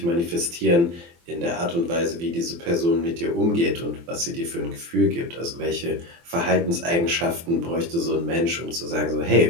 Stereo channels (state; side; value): late; left; 23 ms